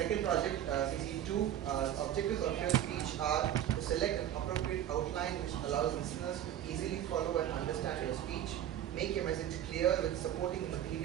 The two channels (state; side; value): quieter; left; 11.2 dB